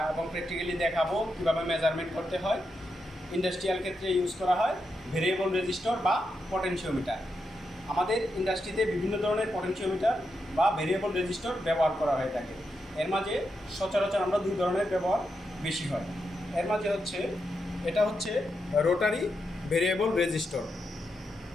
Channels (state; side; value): normal; both; correlation 0.85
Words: এবং প্র্যাকটিক্যালি দেখাবো কীভাবে মেজারমেন্ট করতে হয়। ইন্ডাস্ট্রিয়াল ক্ষেত্রে ইউজ করা হয় ভেরিয়েবল রেজিস্টর বা পটেনশিওমিটার। আমাদের ইন্ডাস্ট্রিতে বিভিন্ন ধরনের পটেনশিওমিটার বা ভেরিয়েবল রেজিস্টর ব্যবহার করা হয়ে থাকে। এর মাঝে সচরাচর আমরা দুই ধরনের ব্যবহার বেশি হয়। এর মাঝে এটা হচ্ছে রোটারি ভেরিয়েবল রেজিস্টর,